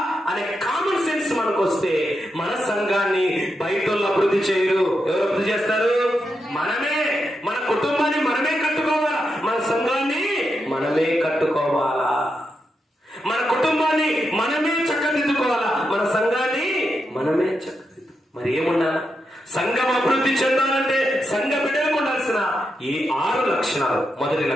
అనే కామన్ సెన్స్ మనకు వస్తే మన సంఘాన్ని బయట అభివృద్ధి చేయరు. ఎవరు అభివృద్ధి చేస్తారు? మనమే. మన కుటుంబాన్ని మనమే కట్టుకోవాలా, మన సంఘాన్ని మనమే కట్టుకోవాలా, మన కుటుంబాన్ని మనమే చక్కదిద్దుకోవాలా, మన సంఘాన్ని మనమే చక్కదిద్దు. మరి ఏముండాలా? సంఘం అభివృద్ధి చెందాలంటే సంఘ బిడ్డలకు ఉండాల్సిన ఈ 6 లక్షణాలు. మొదటి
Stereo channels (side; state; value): both; normal; correlation 0.85